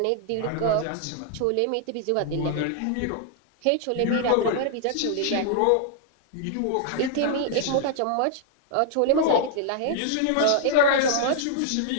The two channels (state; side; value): different; both; correlation 0.00